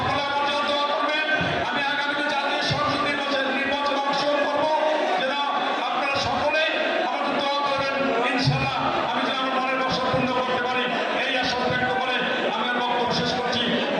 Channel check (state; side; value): identical; both; correlation 1.00